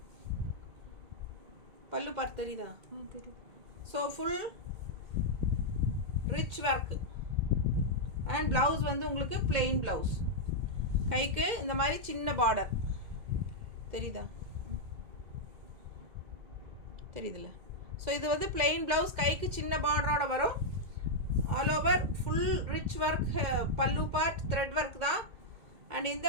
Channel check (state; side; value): late; left; 2.2 ms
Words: பல்லு பார்ட் தெரியுதா? தெரியும். So full rich work. And blouse வந்து உங்களுக்கு பிளெயின் ப்ளவுஸ். கைக்கு இந்த மாதிரி சின்ன பார்டர் தெரியுதா? தெரியுதுல்ல? ஸோ இது வந்து பிளெயின் ப்ளவுஸ், கைக்கு சின்ன பார்டரோட வரும். All over full rich work. பல்லு பார்ட் த்ரெட் ஒர்க் தான். அண்ட் இந்த